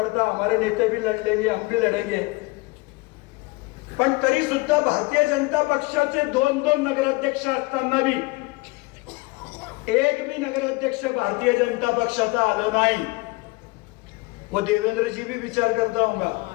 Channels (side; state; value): right; quieter; 24.6 dB